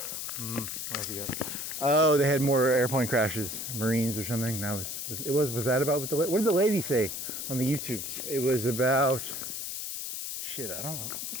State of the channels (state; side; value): noise; left; hiss, 5 dB below the sound